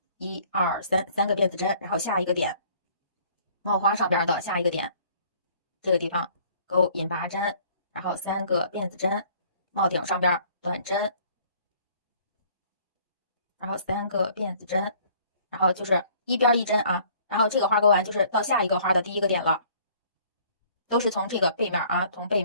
，1、2、3，三个辫子针，然后下一个点，帽花上边的下一个点，这个地方勾引拔针，然后3个辫子针，帽顶上边短针，然后3个辫子针，然后就是一边一针啊，然后这个花勾完就是到下一个花的第一个点了，都是从这个背面啊，从背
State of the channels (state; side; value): inverted; both; correlation -0.57